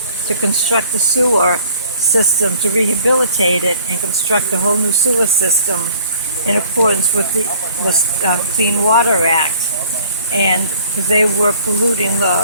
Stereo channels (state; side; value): inverted; both; correlation -0.53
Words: to construct a sewer system, to rehabilitate it and construct a whole new sewer system in accordance with the Clean Water Act. And they were